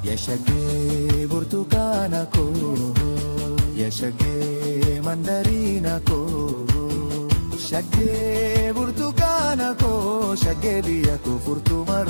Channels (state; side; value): inverted; both; correlation -1.00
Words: Shagee burtukaana ko, shagee mandarina ko, shagee burtukaana ko, shagee biyya ko furtuuma